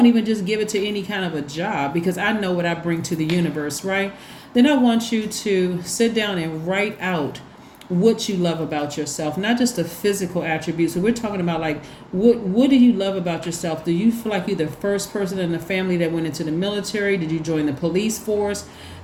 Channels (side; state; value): both; identical; correlation 1.00